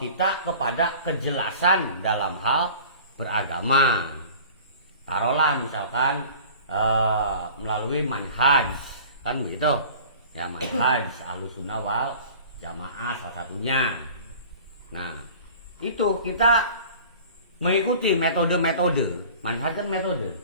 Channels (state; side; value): inverted; both; correlation -0.43